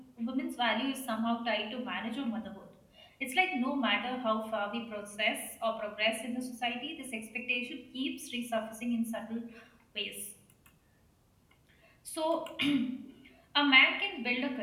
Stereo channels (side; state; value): both; identical; correlation 1.00